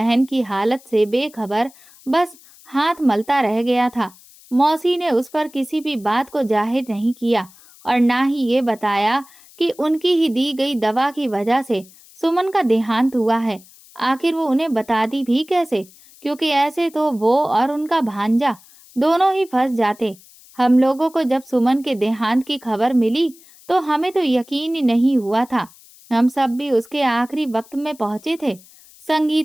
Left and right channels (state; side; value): noise; left; hiss, 25 dB below the sound